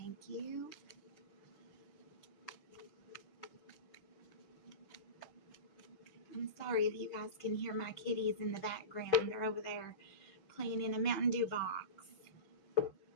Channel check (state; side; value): late; right; 6.2 ms